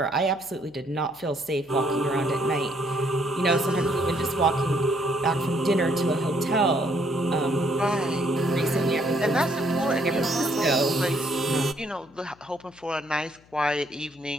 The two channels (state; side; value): noise; left; hum, 29 dB below the sound